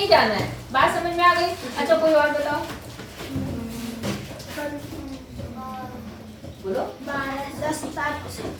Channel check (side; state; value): both; identical; correlation 1.00